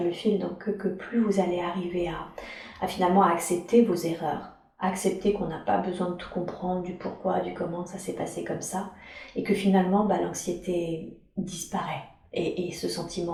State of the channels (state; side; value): identical; both; correlation 1.00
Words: le fil, donc que plus vous allez arriver à finalement accepter vos erreurs, accepter qu'on n'a pas besoin de tout comprendre, du pourquoi, du comment ça s'est passé comme ça, et que finalement l'anxiété disparaît, et ce